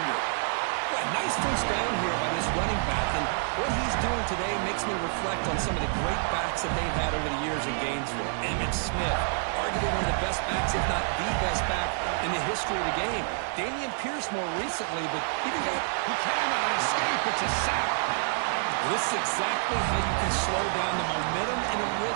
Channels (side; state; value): left; silent; 59 dB below the other